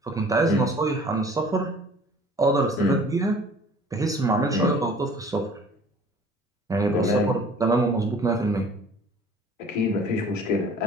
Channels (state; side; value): normal; both; correlation 0.50